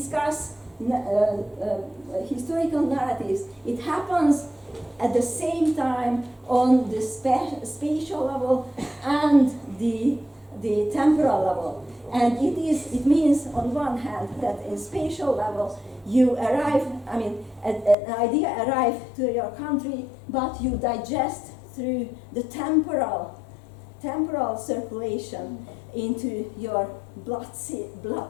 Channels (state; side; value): drops out; right; at 17.9 s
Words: historical narratives, it happens at the same time on the spatial level and the temporal level. And it means on one hand that in spatial level you arrive, an idea arrives to your country, but you digest through the temporal circulation into your bloodstream,